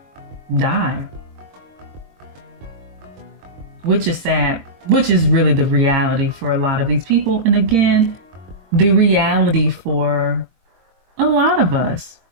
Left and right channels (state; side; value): late; left; 22 ms